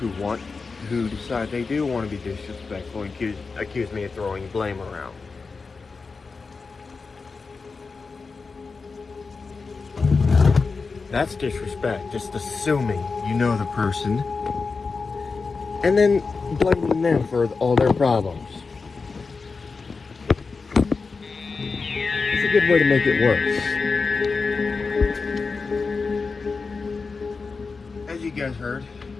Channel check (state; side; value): quieter; right; 4.5 dB